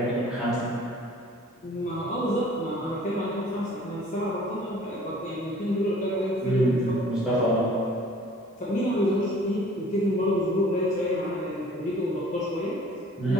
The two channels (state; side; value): normal; both; correlation 0.51